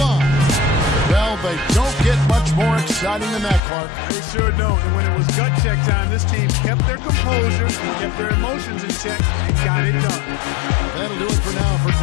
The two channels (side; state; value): right; drops out; at 3.6 s